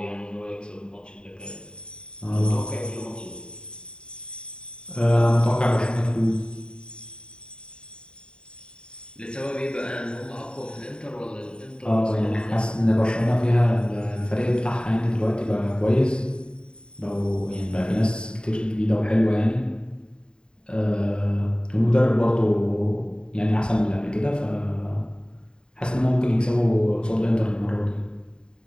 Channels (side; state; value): right; late; 0.049 ms